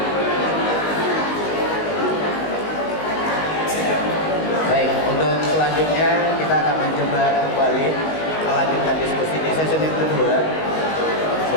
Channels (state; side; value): late; right; 19 ms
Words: Baik, untuk selanjutnya kita akan mencoba kembali melanjutkan diskusi di sesi yang kedua